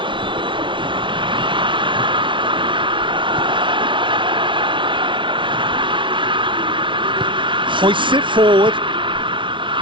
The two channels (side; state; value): left; late; 0.24 ms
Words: Hoists it forward.